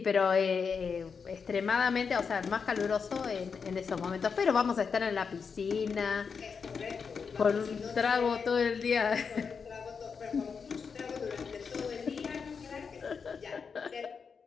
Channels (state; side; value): quieter; right; 5.8 dB